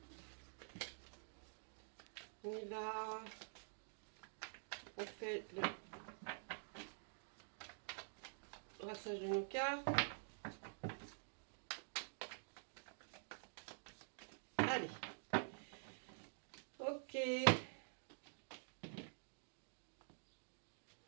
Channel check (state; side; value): silent; left; digital silence